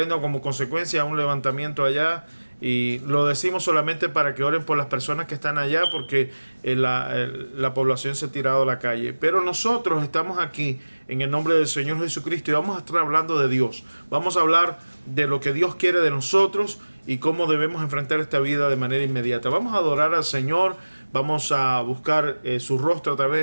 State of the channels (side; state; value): both; inverted; correlation -1.00